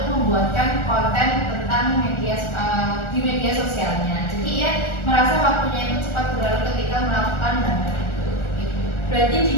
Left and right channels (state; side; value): late; right; 1.4 ms